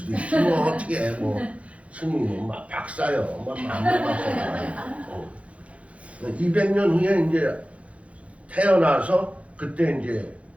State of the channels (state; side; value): late; left; 0.064 ms